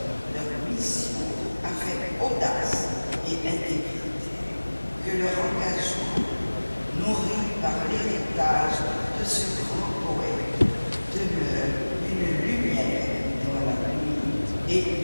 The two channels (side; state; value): both; inverted; correlation -1.00